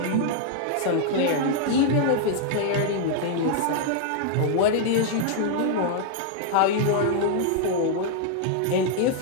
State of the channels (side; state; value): both; different; correlation 0.00